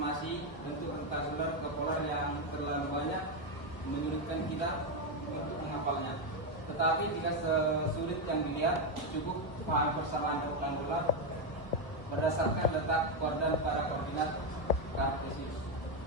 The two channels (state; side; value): late; right; 1.2 ms